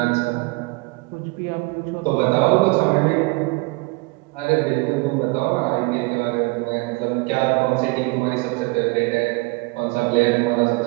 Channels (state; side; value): quieter; left; 25.9 dB